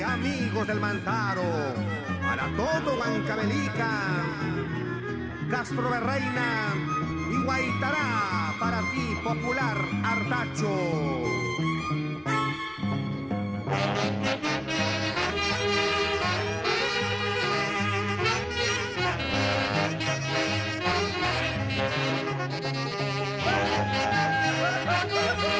amigos del Mantaro, para todo Huancavelica, Castro de Reina y Guaitará, para ti, popular Artacho.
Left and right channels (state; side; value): identical; both; correlation 1.00